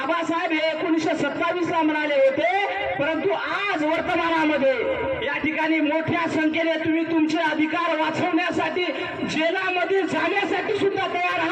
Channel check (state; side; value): identical; both; correlation 1.00